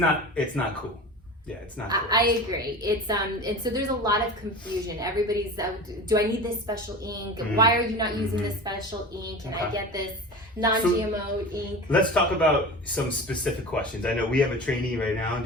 cool." Yeah, it's not cool. I agree. It's and so there's a lot of confusion. Everybody's, do I need this special ink? Why are you not using this special ink? Can I get this non-GMO ink? Let's talk about some specific questions. I know we have a trainee right now. Do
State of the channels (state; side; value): normal; both; correlation 0.33